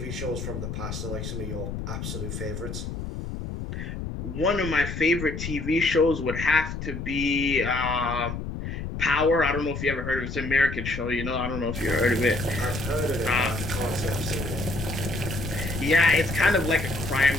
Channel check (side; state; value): left; noise; rumble, 6 dB below the sound